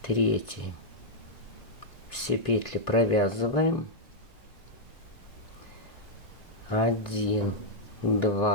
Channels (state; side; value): late; right; 1.9 ms